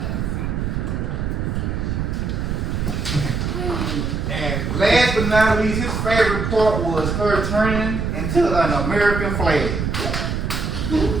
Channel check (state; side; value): noise; right; rumble, 1 dB below the sound